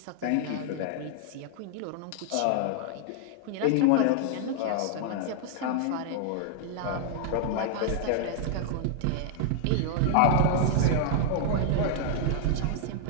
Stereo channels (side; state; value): both; different; correlation 0.00